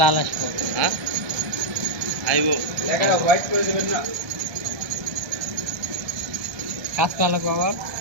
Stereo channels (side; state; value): left; late; 1.2 ms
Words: লাল আসবো। হ্যাঁ আইব। কাজ করা লাগবো আবার,